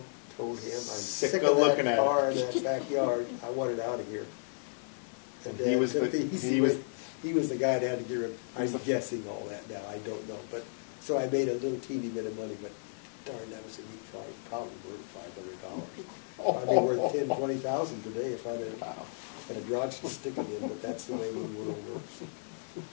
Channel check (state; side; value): silent; right; digital silence